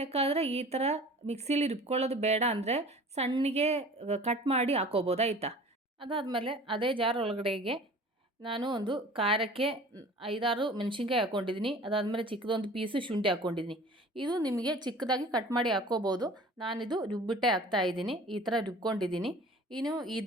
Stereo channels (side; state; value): both; normal; correlation 0.44